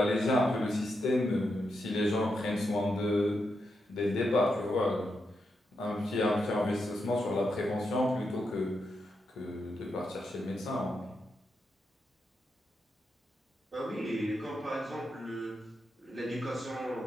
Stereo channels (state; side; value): normal; both; correlation 0.84